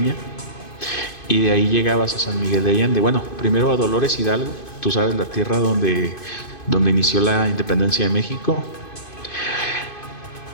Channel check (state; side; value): late; right; 2.5 ms